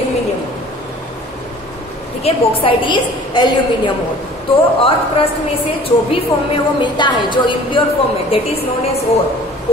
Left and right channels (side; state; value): both; normal; correlation 0.48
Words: ठीक है. बॉक्साइट इज एल्यूमिनियम ओर. तो अर्थ क्रस्ट में से जो भी फॉर्म में वो मिलता है, जो इम्प्योर फॉर्म में, that is known as ore,